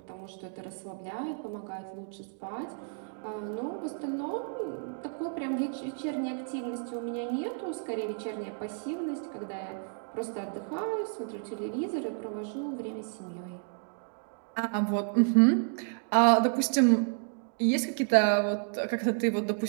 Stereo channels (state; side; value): silent; left; 57 dB below the other